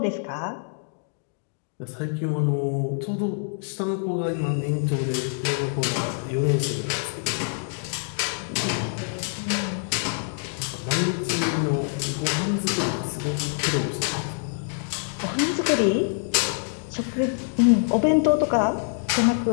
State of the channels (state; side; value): silent; right; digital silence